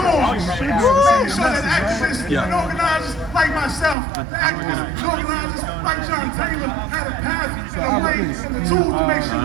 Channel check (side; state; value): left; drops out; at 4.0 s